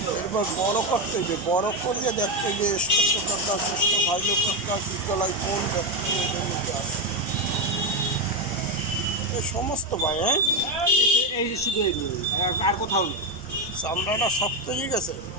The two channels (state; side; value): noise; left; hum, 27 dB below the sound